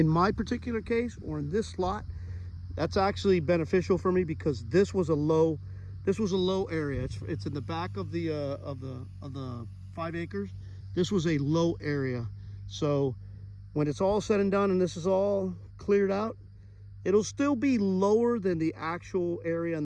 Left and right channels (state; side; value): identical; both; correlation 1.00